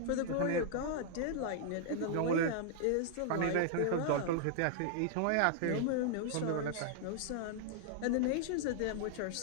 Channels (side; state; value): both; different; correlation -0.01